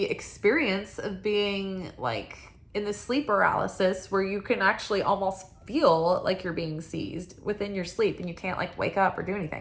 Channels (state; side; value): identical; both; correlation 1.00